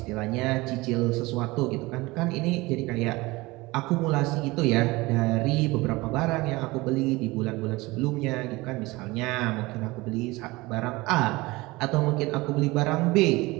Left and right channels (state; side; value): quieter; left; 21.7 dB